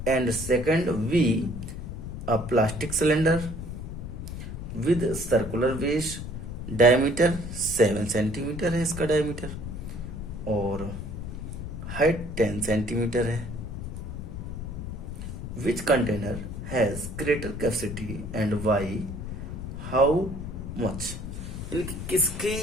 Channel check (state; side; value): noise; left; rumble, 7 dB below the sound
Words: And second we, a plastic cylinder with circular base, diameter 7 centimetre है इसका डायमीटर और हाइट 10 सेंटीमीटर है। Which container has greater capacity and why, how much, इनकी किसकी